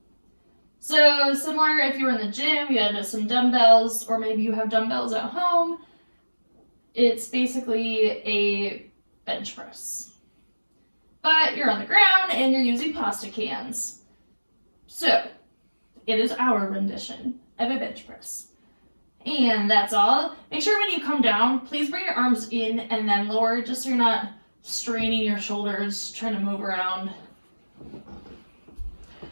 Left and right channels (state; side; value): inverted; both; correlation -1.00